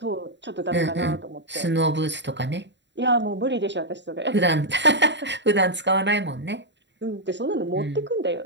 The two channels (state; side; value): late; left; 0.52 ms